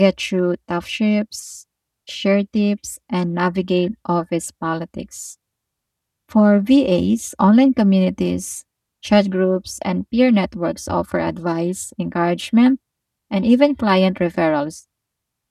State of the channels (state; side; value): identical; both; correlation 1.00